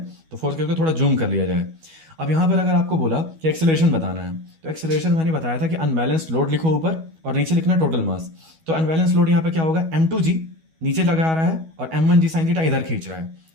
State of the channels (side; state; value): left; late; 12 ms